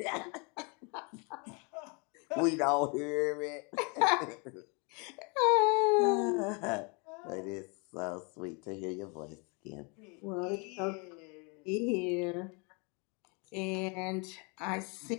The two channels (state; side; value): quieter; right; 32.7 dB